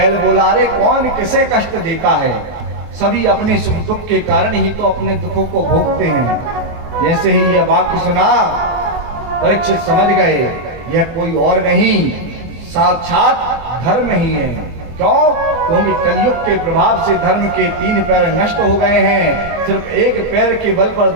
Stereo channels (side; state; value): left; late; 23 ms